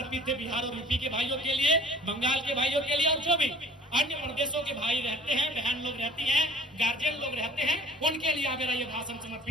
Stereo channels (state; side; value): normal; both; correlation 0.48